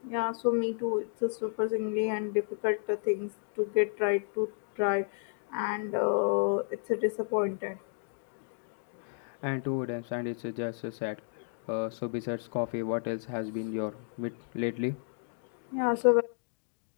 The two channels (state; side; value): silent; right; digital silence